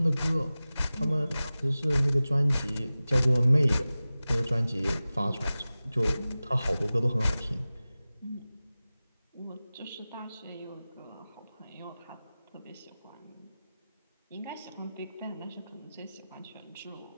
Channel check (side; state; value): both; inverted; correlation -0.97